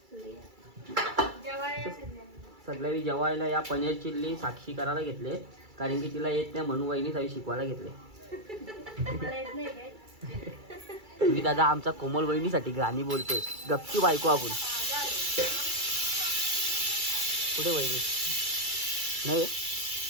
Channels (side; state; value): left; late; 2.3 ms